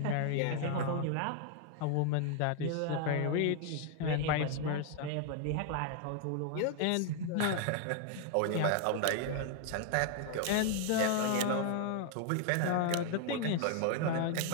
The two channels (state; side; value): different; both; correlation 0.00